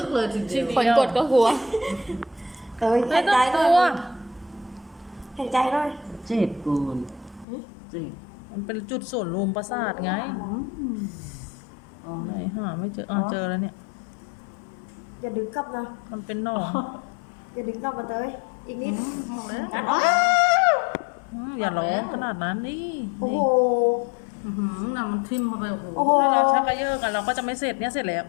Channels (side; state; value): right; drops out; at 7.5 s